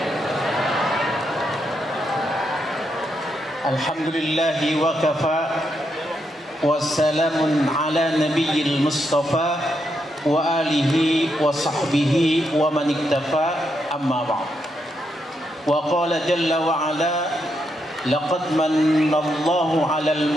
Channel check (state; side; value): normal; both; correlation 0.81